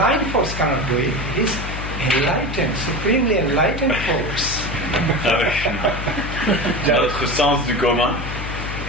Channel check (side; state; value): left; noise; hum, 7 dB below the sound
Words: force cannot do it. It is enlightened, supremely enlightened force. Dans notre sens du commun,